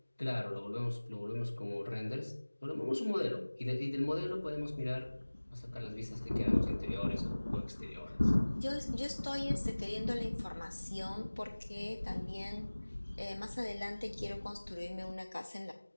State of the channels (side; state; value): both; inverted; correlation -1.00